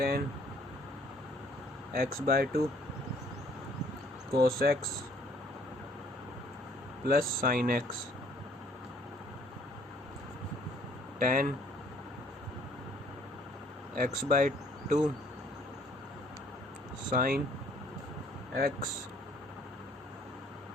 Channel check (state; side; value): normal; both; correlation 0.61